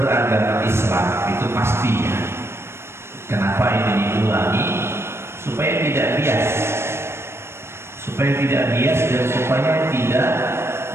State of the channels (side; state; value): left; late; 0.12 ms